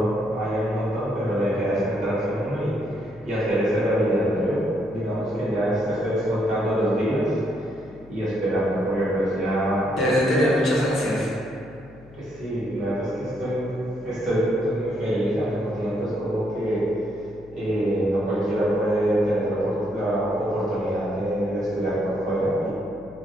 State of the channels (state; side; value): noise; left; hum, 22 dB below the sound